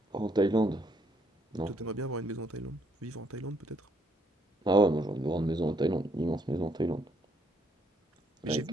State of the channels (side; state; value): both; normal; correlation 0.70